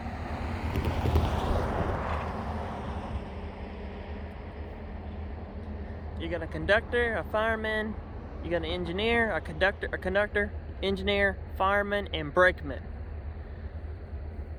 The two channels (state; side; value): identical; both; correlation 1.00